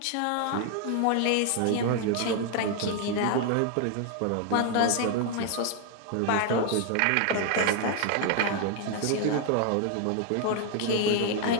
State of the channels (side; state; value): both; different; correlation 0.00